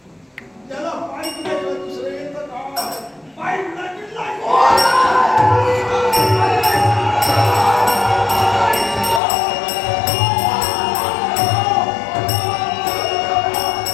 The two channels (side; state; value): right; drops out; at 9.2 s